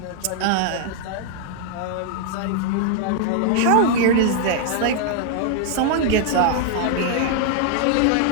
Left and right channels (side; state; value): both; different; correlation 0.00